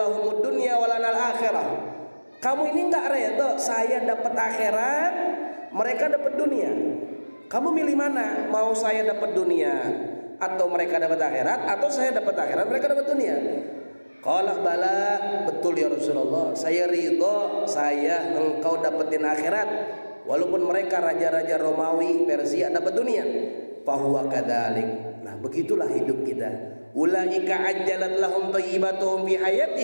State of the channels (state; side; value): inverted; both; correlation -1.00